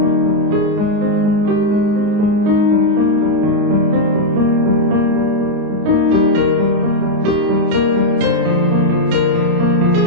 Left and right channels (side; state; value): left; late; 29 ms